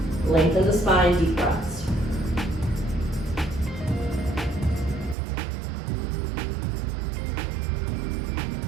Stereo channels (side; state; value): left; drops out; at 5.2 s